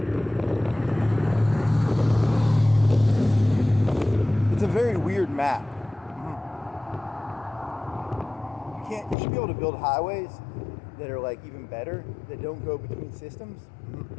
It's a very weird map. You should be able to build highways that are like even better, that don't go between systems.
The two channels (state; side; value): drops out; right; at 9.2 s